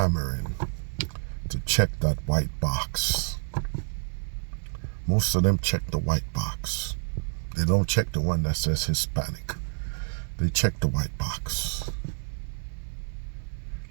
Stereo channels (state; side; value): silent; left; digital silence